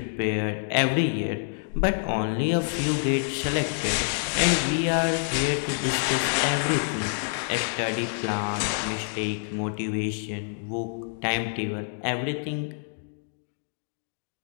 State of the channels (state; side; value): silent; right; digital silence